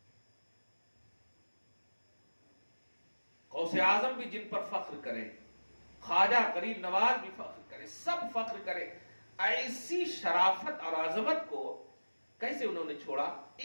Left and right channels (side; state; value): both; inverted; correlation -1.00